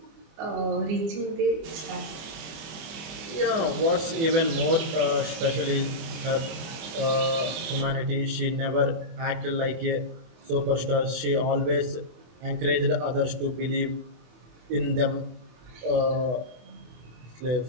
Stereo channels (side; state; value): left; late; 24 ms